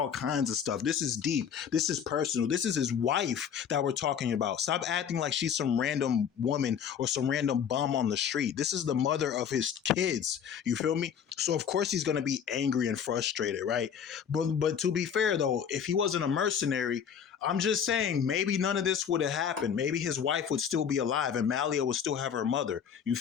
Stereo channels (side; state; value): right; quieter; 7.9 dB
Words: kinds of stuff. This is deep. This is personal. This is his wife that we're talking about. Stop acting like she's some random woman or some random bum on the street. This is the mother of his kids. You feel me? So of course he's gonna be angry and frustrated, right? But to be fair though, if he wasn't a mercenary, I'm just saying maybe none of this would have happened. Maybe his wife would still be alive and Malia would still have her mother. You